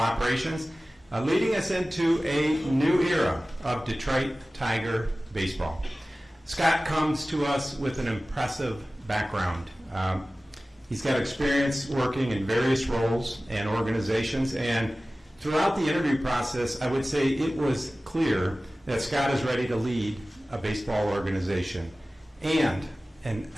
leading us into a new era of Detroit Tiger baseball. Scott comes to us with an impressive background. He's got experience working in various roles and organizations, and throughout the interview process, I would say it was clear that Scott is ready to lead a baseball organization and an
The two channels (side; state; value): both; normal; correlation 0.97